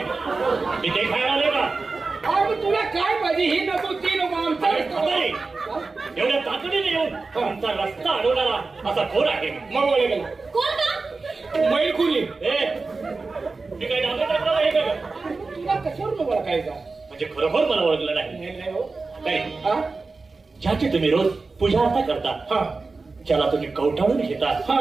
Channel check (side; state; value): left; quieter; 3.9 dB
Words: मी ते खायला आले का? अरे तुला काय पाहिजे? ही नको ती नको अरे म्हातारे, आमचं. एवढ्या तातडीने येऊन आमचा रस्ता अडवणारा असा कोण आहे? मग ओळे गेला कोण का? मैलखुरी. मी काही डांबे टाकला आहे का? तुला कशावर नको काय का? म्हणजे खरोखर मला ओळखलं नाही. नाही हो. काय हा ज्याची तुम्ही रोज पूजा अर्था करता, हा ज्याला तुम्ही कवटाळून घेता, हा